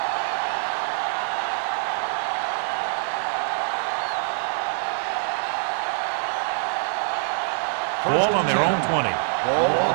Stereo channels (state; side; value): silent; left; digital silence